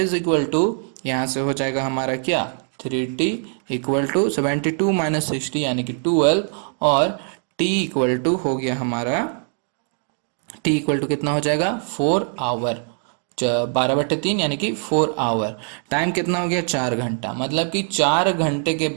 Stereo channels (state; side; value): silent; left; 56 dB below the other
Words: equal to यहाँ से हो जाएगा हमारा क्या, 3T इक्वल टू 72 माइनस 60 यानी कि 12, और T इक्वल टू हो गया हमारा, T इक्वल टू कितना हो जाएगा 4 आवर, 12/3 यानी कि 4 आवर। टाइम कितना हो गया 4 घंटा, मतलब कि 4 घंटे के